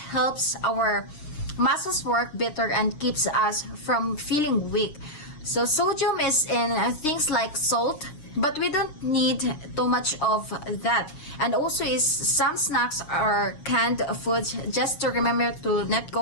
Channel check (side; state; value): right; late; 6.5 ms